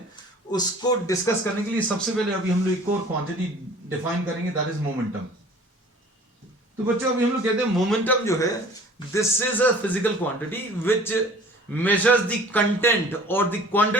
उसको डिस्कस करने के लिए सबसे पहले अभी हम लोग एक और क्वांटिटी डिफाइन करेंगे, दैट इज मोमेंटम. तो बच्चों अभी हम लोग कहते हैं मोमेंटम जो है, this is a physical quantity which measures the content और the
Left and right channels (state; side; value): normal; both; correlation 0.48